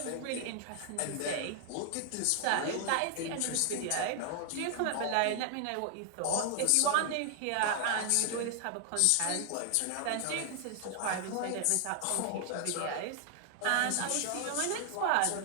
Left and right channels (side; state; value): both; different; correlation 0.00